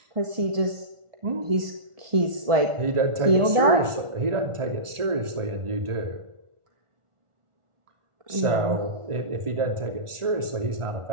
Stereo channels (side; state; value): left; late; 1.4 ms